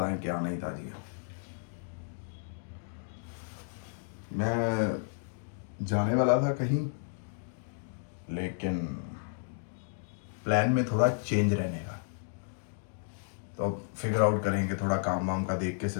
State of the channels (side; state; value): right; silent; digital silence